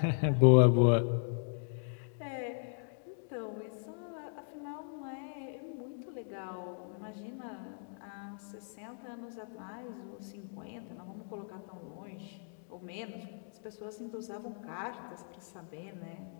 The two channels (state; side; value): silent; right; digital silence